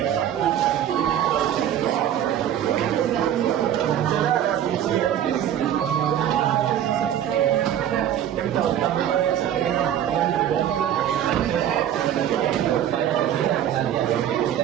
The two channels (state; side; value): quieter; left; 10.5 dB